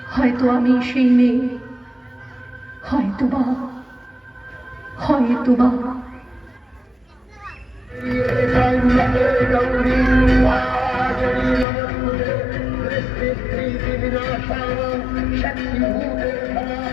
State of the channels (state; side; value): drops out; right; at 11.7 s